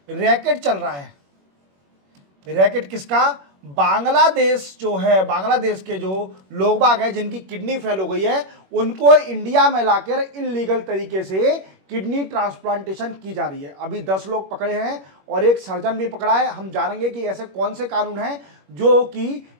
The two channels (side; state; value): left; late; 21 ms